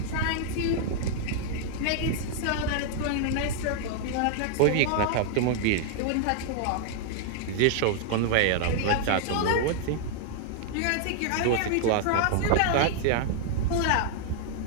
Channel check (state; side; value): different; both; correlation -0.01